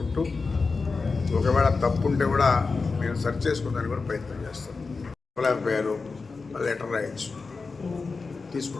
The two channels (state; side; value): quieter; right; 4.3 dB